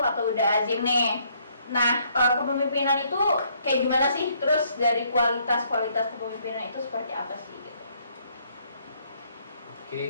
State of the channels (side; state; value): both; inverted; correlation -0.68